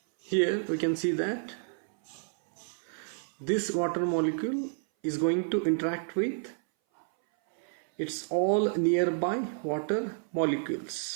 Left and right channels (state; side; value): silent; left; 58 dB below the other